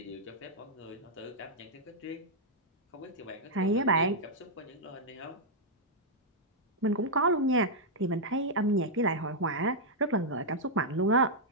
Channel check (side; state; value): both; normal; correlation -0.07